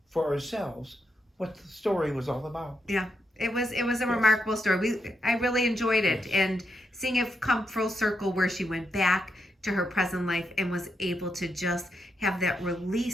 for ourselves what the story was all about. Yeah. It was a remarkable story. I really enjoyed it, and seeing it come full circle where she went back to her present life and was able to just have that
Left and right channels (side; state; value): both; normal; correlation 0.82